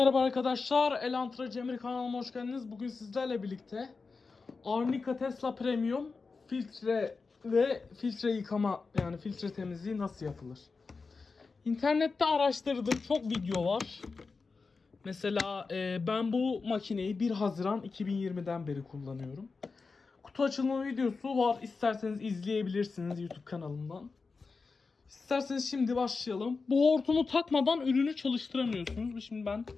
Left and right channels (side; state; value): right; quieter; 4.4 dB